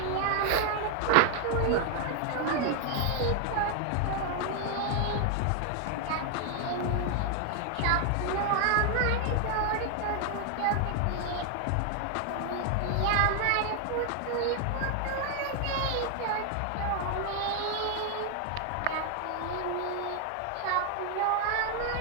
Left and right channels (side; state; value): both; different; correlation 0.00